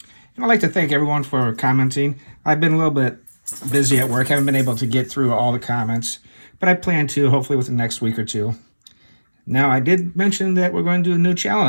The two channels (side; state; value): both; inverted; correlation -1.00